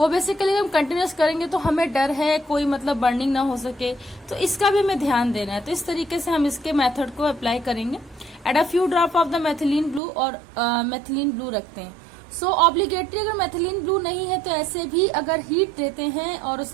बेसिकली हम कंटिन्यूस करेंगे तो हमें डर है कोई मतलब बर्निंग ना हो सके, तो इसका भी हमें ध्यान देना है. तो इस तरीके से हम इसके मेथड को अप्लाई करेंगे. Add a few drop of the methylene blue, और मेथिलीन ब्लू रखते हैं. सो ऑब्लिगेटरी अगर मेथिलीन ब्लू नहीं है तो ऐसे भी अगर हीट देते हैं और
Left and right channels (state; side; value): drops out; left; at 10.0 s